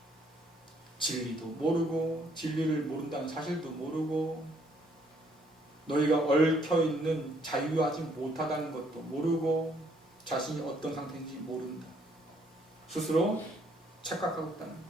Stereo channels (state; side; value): normal; both; correlation 0.67